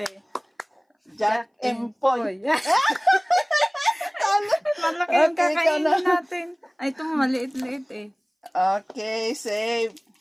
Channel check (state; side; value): identical; both; correlation 1.00